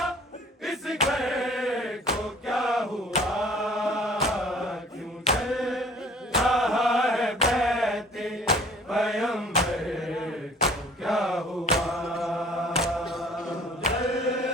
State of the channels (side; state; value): both; normal; correlation 0.52